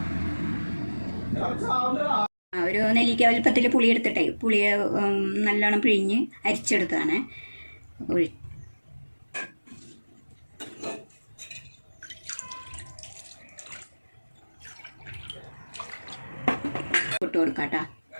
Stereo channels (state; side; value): inverted; both; correlation -1.00